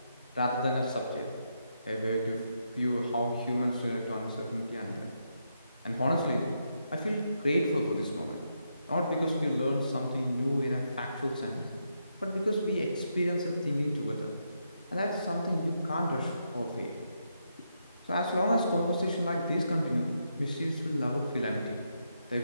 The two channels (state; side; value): inverted; both; correlation -0.81